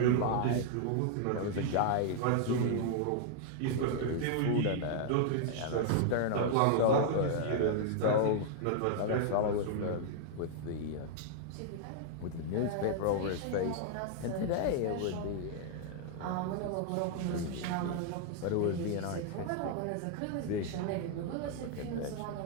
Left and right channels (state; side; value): different; both; correlation -0.01